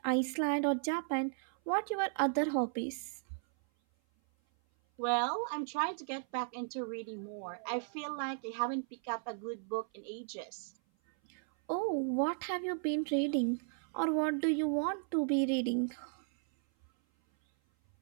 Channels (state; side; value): silent; left; 54 dB below the other